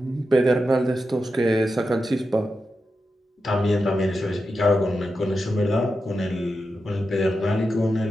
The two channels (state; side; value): normal; both; correlation 0.89